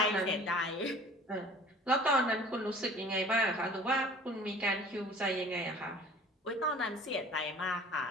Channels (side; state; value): both; normal; correlation 0.47